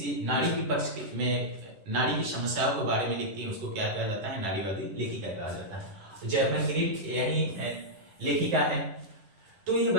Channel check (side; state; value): left; late; 11 ms